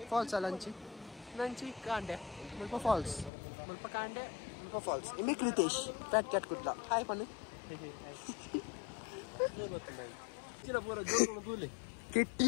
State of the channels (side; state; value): right; drops out; at 3.3 s